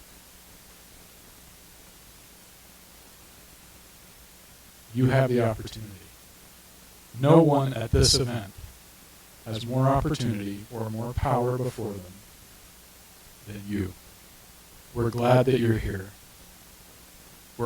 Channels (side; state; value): both; identical; correlation 1.00